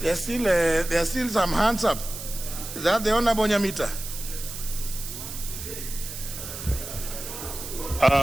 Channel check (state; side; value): noise; right; hiss, 9 dB below the sound